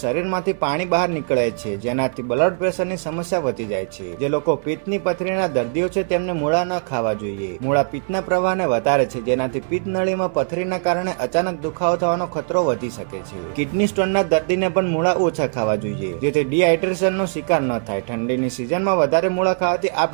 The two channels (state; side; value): silent; left; 58 dB below the other